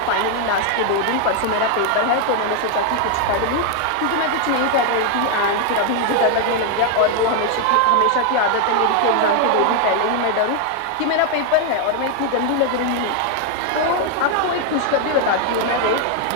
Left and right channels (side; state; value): both; different; correlation 0.00